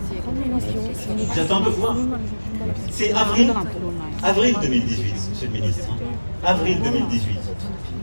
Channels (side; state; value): both; inverted; correlation -1.00